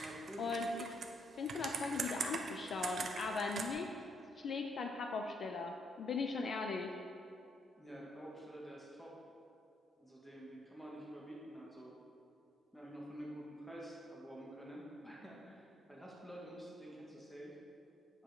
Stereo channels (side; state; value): both; normal; correlation 0.72